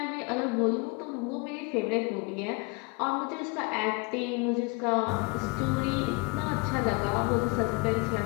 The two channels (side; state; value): right; quieter; 31.0 dB